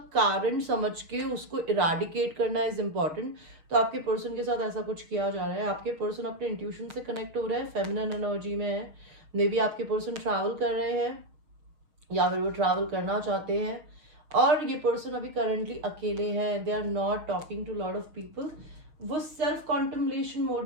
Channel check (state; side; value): late; left; 6.4 ms